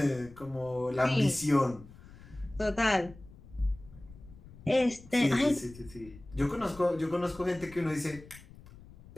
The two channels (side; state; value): left; noise; rumble, 20 dB below the sound